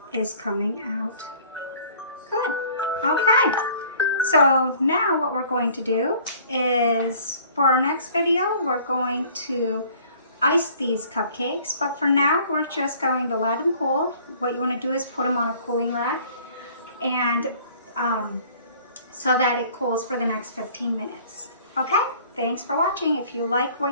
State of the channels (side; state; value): both; inverted; correlation -0.52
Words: is coming out good. Okay, so now what we're going to do is, for our next video, we're going to ice these cupcakes, but for now we're just going to let them cool. What you want to do is put them on a cooling rack, and so that it cools for the next 15 minutes. Okay, thanks for watching. If you like